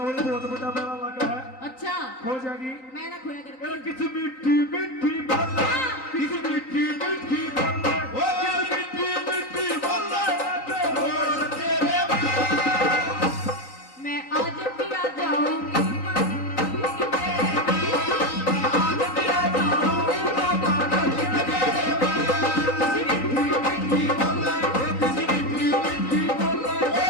बहुत बड़ा मेला लगा है। अच्छा, हो जाएगी। मैं ना खोया मेरा करती। किसी मिट्टी मिट्टी बोले, किसी मिट्टी मिट्टी बोले, ओ मिट्टी मिट्टी बोले लगे रोड तेरे मैं आज पिया जाऊंगी मंडोली के मेले में। आज पिया जाऊंगी मंडोली के मेले में। मिट्टी बोले किसी मिट्टी मिट्टी बोले,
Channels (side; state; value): right; late; 3.9 ms